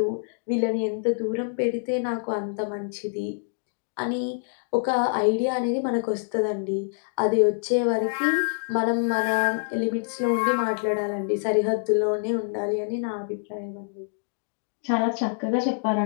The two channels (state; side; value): silent; right; digital silence